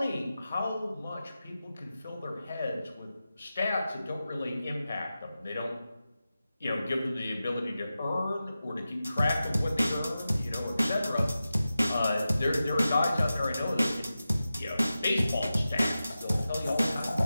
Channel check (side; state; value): both; inverted; correlation -0.93